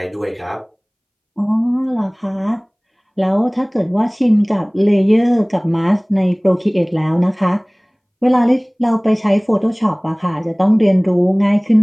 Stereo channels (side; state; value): both; identical; correlation 1.00